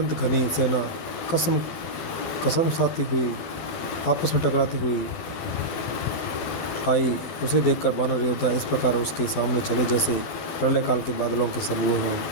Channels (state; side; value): late; right; 12 ms